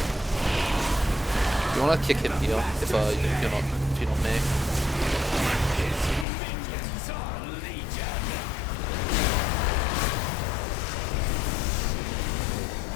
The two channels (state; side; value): drops out; right; at 6.2 s